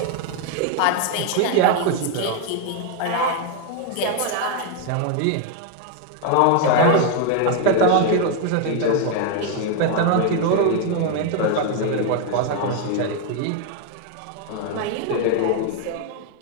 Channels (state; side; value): different; both; correlation 0.00